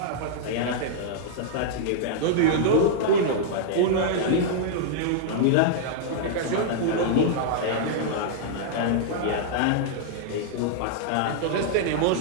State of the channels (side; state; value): both; different; correlation -0.02